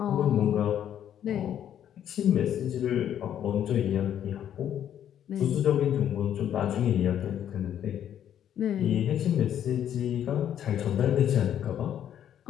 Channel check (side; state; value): right; quieter; 10.1 dB